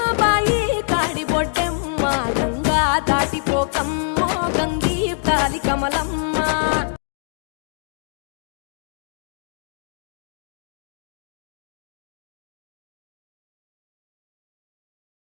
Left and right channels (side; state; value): right; silent; digital silence